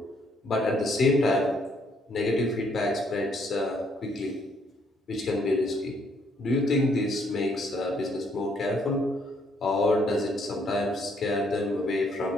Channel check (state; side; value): normal; both; correlation 0.69